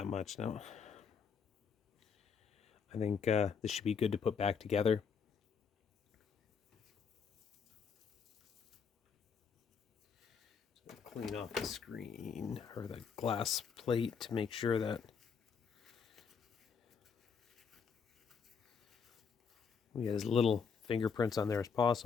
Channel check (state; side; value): quieter; right; 6.2 dB